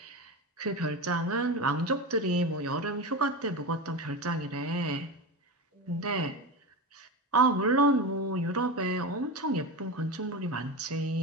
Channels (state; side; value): normal; both; correlation 0.22